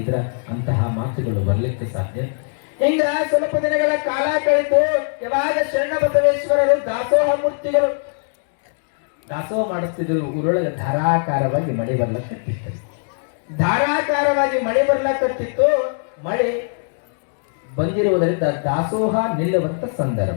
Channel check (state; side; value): silent; right; digital silence